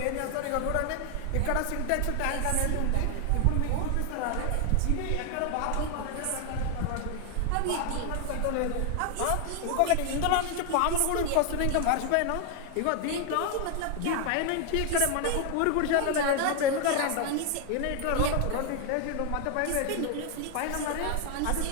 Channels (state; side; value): different; both; correlation 0.00